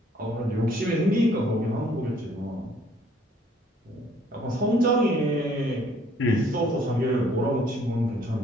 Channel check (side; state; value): both; normal; correlation 0.61